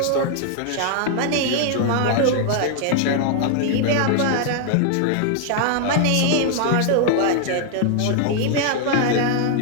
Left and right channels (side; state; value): both; different; correlation 0.00